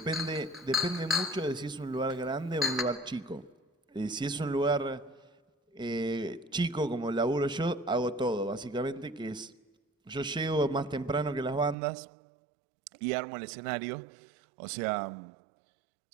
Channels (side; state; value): left; drops out; at 11.8 s